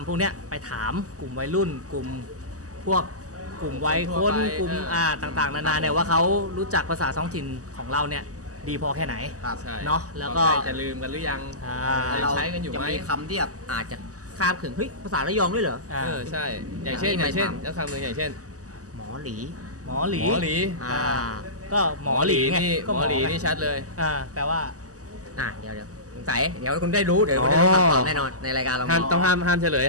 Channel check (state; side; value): late; left; 0.66 ms